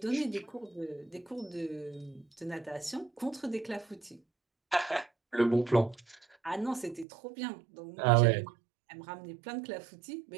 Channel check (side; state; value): left; drops out; at 7.1 s